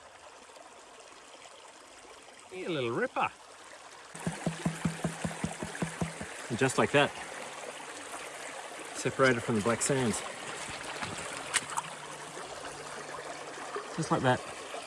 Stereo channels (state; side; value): identical; both; correlation 1.00